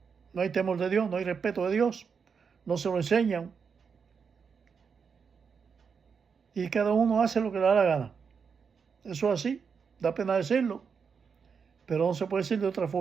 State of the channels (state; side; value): quieter; left; 6.1 dB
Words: temor de Dios, no hay respeto de Dios, no se lo enseñan. Y cada uno hace lo que le da la gana. Eso es así, da pena decirlo, pero no se puede decir de otra